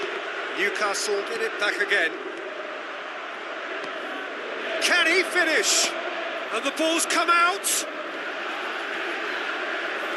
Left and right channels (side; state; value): both; identical; correlation 1.00